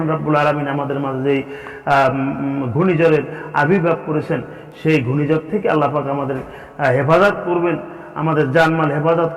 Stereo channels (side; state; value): both; identical; correlation 1.00